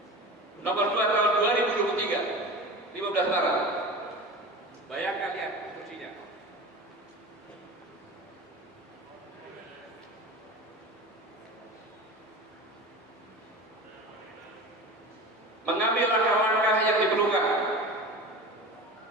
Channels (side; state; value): both; normal; correlation 0.32